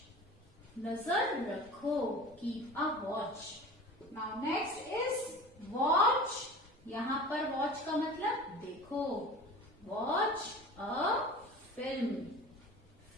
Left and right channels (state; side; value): normal; both; correlation 0.37